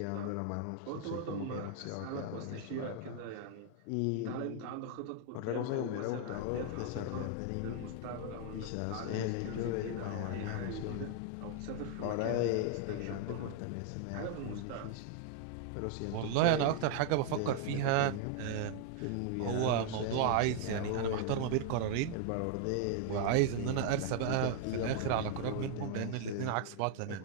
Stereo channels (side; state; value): both; different; correlation 0.00